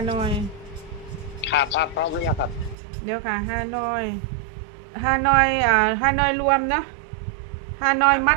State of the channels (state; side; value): drops out; left; at 2.8 s